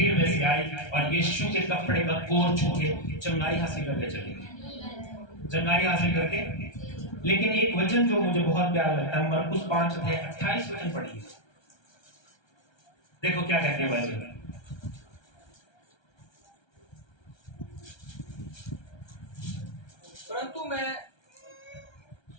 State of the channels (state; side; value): late; right; 1.3 ms